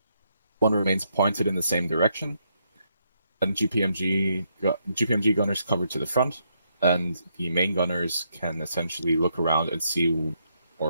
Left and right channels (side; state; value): both; inverted; correlation -0.77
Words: One remains pointed in the same direction, and GPMG gunners cover to the front, and the main gunners can essentially look around and see,